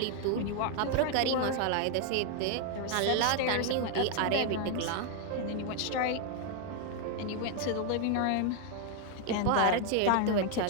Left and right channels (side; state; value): both; different; correlation 0.00